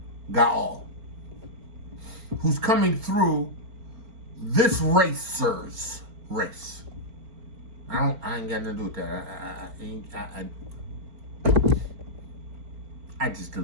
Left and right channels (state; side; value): late; left; 4.4 ms